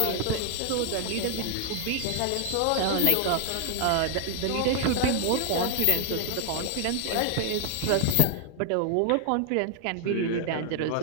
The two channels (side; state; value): both; different; correlation 0.00